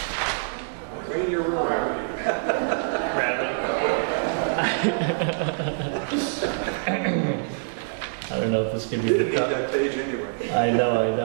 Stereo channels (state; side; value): silent; left; digital silence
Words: gravity. I don't know if this can be the cut. I know.